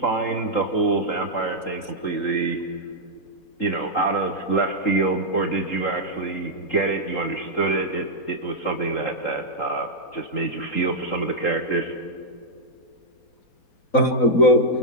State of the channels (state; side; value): late; right; 4.0 ms